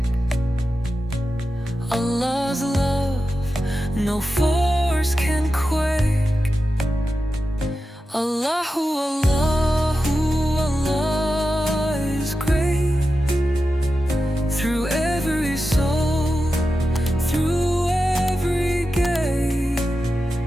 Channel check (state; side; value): normal; both; correlation 0.91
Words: Allah's love, no force can quake. Allahu, Allahu, Allah is great. Through every soul, through every gate,